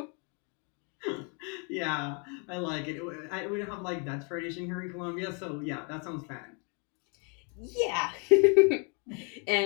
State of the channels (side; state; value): right; quieter; 36.2 dB